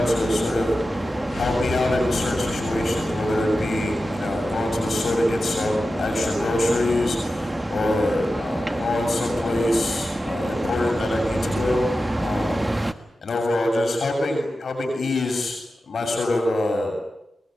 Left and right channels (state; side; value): normal; both; correlation 0.92